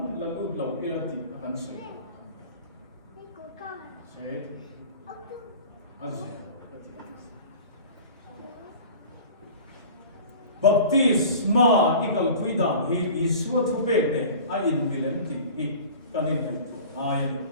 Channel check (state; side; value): inverted; both; correlation -0.41